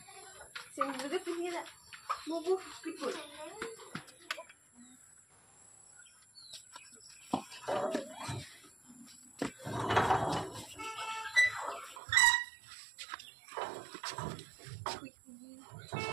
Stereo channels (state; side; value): drops out; left; at 12.0 s